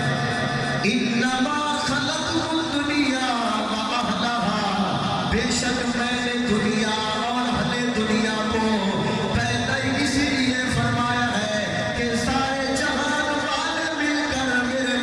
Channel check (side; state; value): both; identical; correlation 1.00